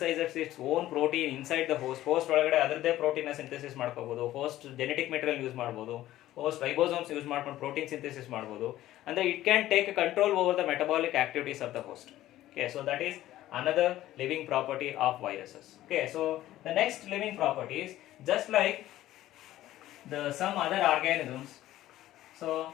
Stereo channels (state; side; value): quieter; right; 14.5 dB